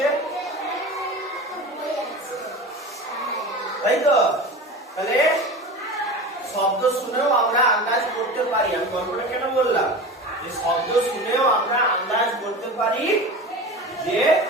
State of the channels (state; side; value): normal; both; correlation 0.31